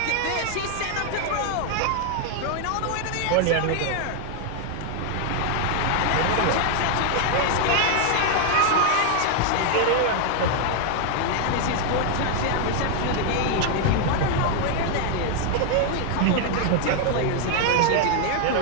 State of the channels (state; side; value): different; both; correlation 0.00